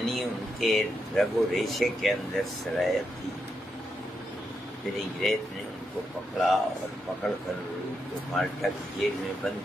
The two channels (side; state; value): both; normal; correlation 0.83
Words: उनके रगो रेशे के अंदर सरायत थी। फिर अंग्रेज़ ने उनको पकड़ा और पकड़ कर उनको माल्टा की जेल में बंद